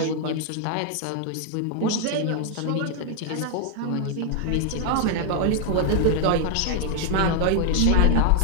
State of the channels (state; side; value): different; both; correlation 0.00